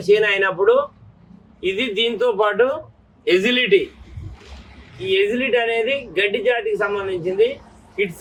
చేను అయినప్పుడు ఇది దీంతో పాటు ఎజిలిటీ. ఈ ఎజిలిటీ అనేది గడ్డి జాతికి సంబంధించింది,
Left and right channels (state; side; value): identical; both; correlation 1.00